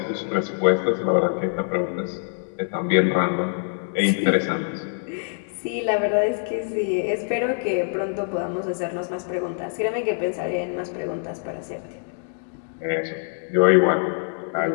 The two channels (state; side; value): silent; right; digital silence